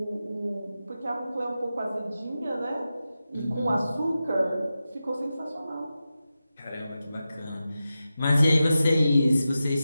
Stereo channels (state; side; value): inverted; both; correlation -0.92